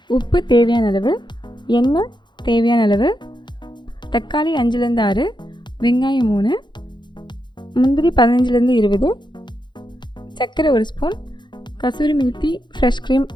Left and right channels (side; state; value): right; late; 0.22 ms